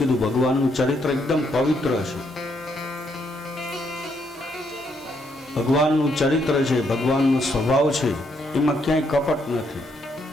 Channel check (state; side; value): normal; both; correlation 0.74